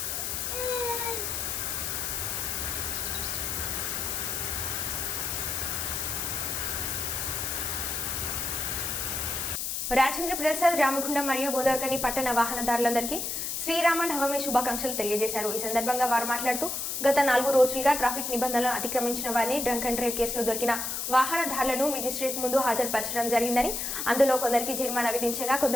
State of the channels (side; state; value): left; noise; hiss, 3 dB below the sound